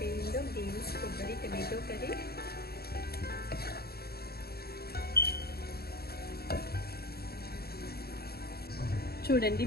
బీన్స్ కొబ్బరి టమాటో కర్రీ. చూడండి,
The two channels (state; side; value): late; right; 0.46 ms